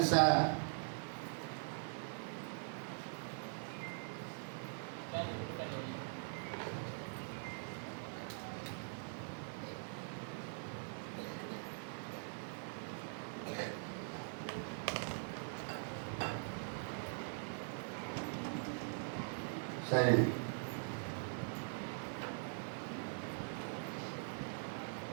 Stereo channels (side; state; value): left; silent; digital silence